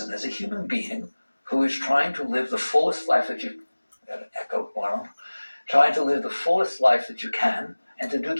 as a human being who is trying to live the fullest life that you, got an echo, trying to live the fullest life that you can, and to do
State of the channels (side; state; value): both; inverted; correlation -1.00